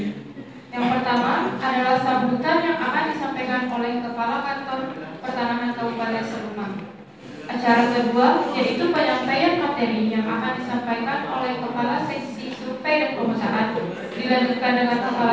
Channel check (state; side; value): identical; both; correlation 1.00